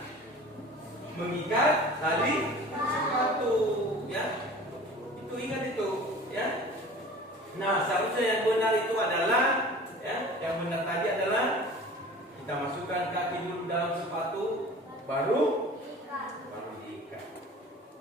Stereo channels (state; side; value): normal; both; correlation 0.42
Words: mengikat tali sepatu, ya. Itu ingat itu, ya. Nah, seharusnya yang benar itu adalah, ya, yang benar tadi adalah kita masukkan kaki dulu dalam sepatu, baru diikat,